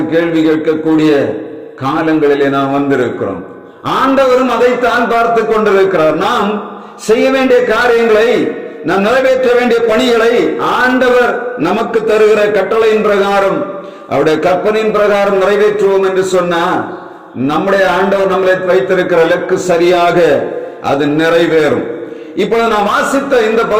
கேள்வி கேட்கக்கூடிய காலங்களிலே நாம் வந்திருக்கிறோம். ஆண்டவரும் அதைத்தான் பார்த்து கொண்டிருக்கிறார். நாம் செய்ய வேண்டிய காரியங்களை, நாம் நிறைவேற்ற வேண்டிய பணிகளை ஆண்டவர் நமக்கு தருகிற கட்டளையின் பிரகாரம், அவருடைய கற்பனையின் பிரகாரம் நிறைவேற்றுவோம் என்று சொன்னா நம்முடைய ஆண்டவர் நம்மளை வைத்திருக்கிற இலக்கு சரியாக அது நிறைவேறும். இப்பொழுது நாம் வாசித்த இந்த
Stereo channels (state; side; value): identical; both; correlation 1.00